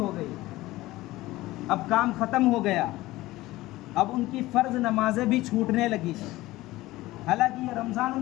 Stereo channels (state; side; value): quieter; right; 18.0 dB